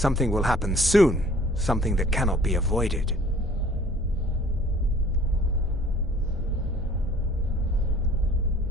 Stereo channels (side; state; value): both; normal; correlation 0.52